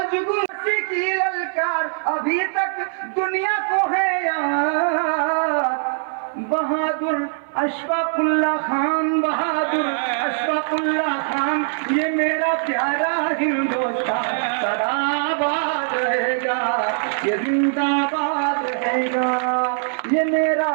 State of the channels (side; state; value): left; silent; 58 dB below the other